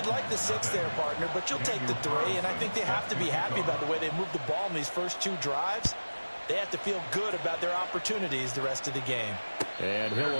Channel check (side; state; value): both; inverted; correlation -1.00